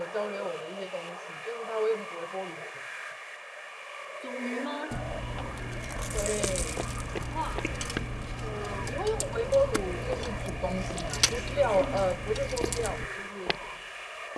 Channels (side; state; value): both; identical; correlation 1.00